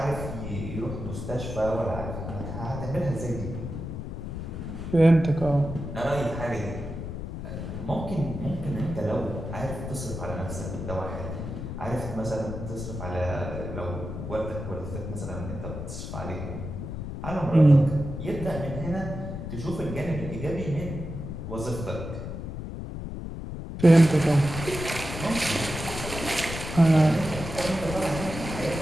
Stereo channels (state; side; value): noise; left; rumble, 7 dB below the sound